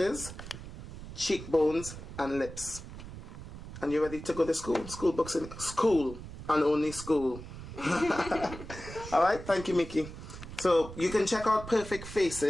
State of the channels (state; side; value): noise; right; rumble, 12 dB below the sound